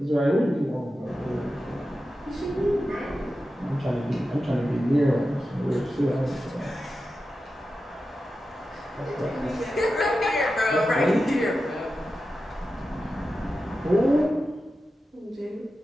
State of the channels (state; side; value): normal; both; correlation 0.92